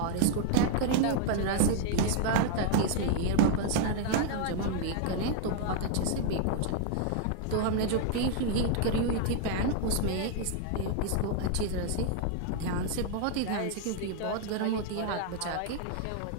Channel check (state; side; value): different; both; correlation 0.00